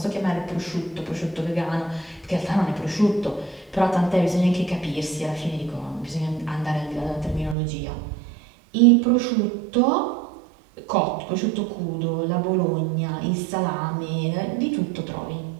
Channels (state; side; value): drops out; left; at 7.6 s